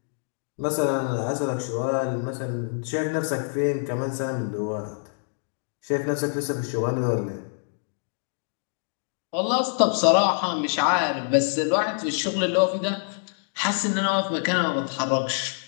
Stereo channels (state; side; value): silent; right; digital silence